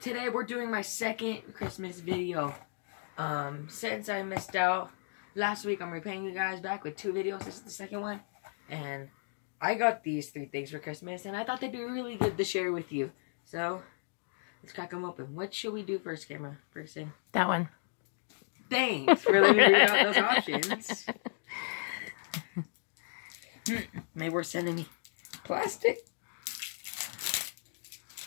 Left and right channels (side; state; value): right; silent; digital silence